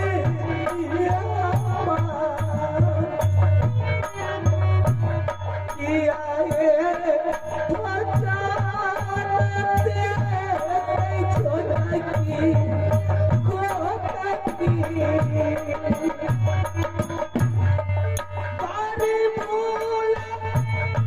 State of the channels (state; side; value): identical; both; correlation 1.00